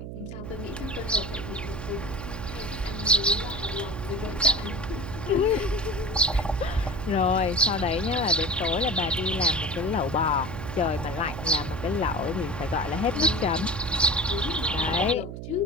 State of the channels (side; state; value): right; noise; hum, 8 dB below the sound